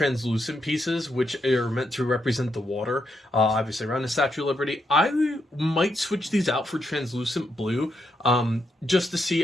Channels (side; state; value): both; normal; correlation 0.80